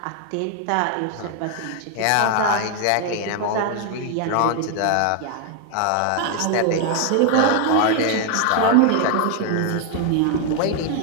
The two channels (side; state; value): both; different; correlation 0.00